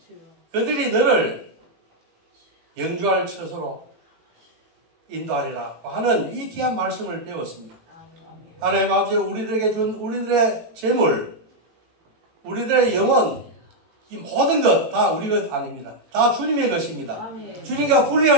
그들이 너를 영주할 처소로 인도하리라 하는 이 귀한 말씀을 배웠습니다. 하나님 아버지 우리들에게 준 우리들의 재물, 우리들의 영혼, 이 모든 것 다 우리 것 아닙니다. 다 주님의 것입니다. 주님과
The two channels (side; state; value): left; late; 18 ms